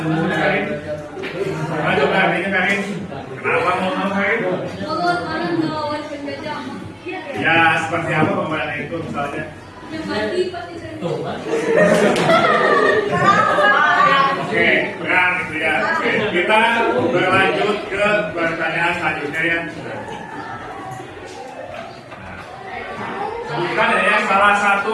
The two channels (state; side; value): identical; both; correlation 1.00